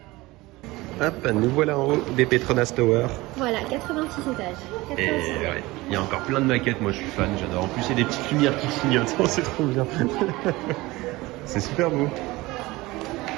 Hop, nous voilà en haut des Petronas Tower. Voilà, 86 étages. 86 Et ouais, il y a encore plein de maquettes, moi je suis fan, j'adore. En plus, il y a des petites lumières qui clignotent, c'est trop bien. C'est super beau.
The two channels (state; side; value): quieter; left; 20.6 dB